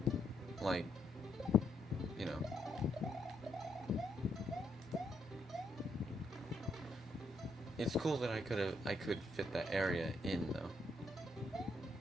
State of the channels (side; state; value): both; normal; correlation 0.76